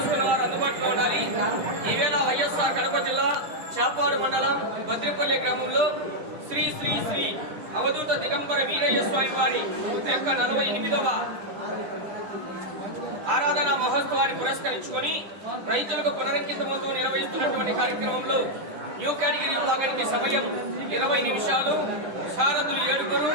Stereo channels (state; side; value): late; left; 9.9 ms